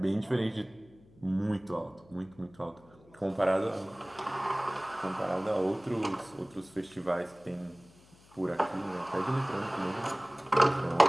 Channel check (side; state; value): left; noise; hum, 26 dB below the sound